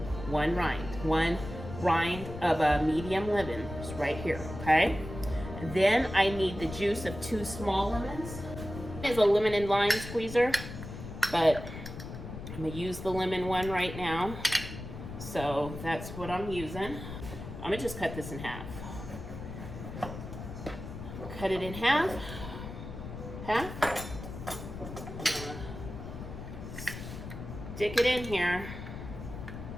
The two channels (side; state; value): left; noise; rumble, 10 dB below the sound